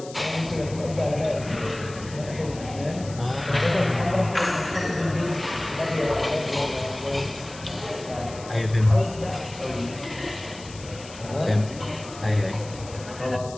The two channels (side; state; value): left; noise; hiss, 17 dB below the sound